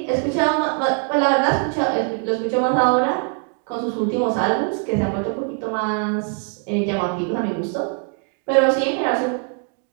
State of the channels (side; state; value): left; quieter; 39.5 dB